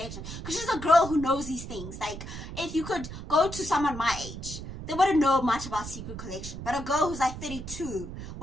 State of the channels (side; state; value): right; noise; rumble, 9 dB below the sound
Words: because she's a girl who knows these things. Like, if you could go to someone my age, they wouldn't know much about secret collection, but a girl who's like 32